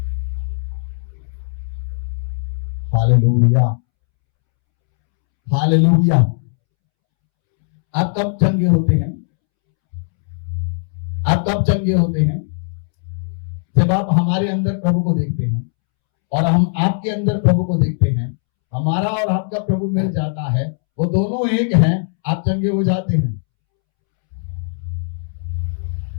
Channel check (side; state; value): right; silent; 67 dB below the other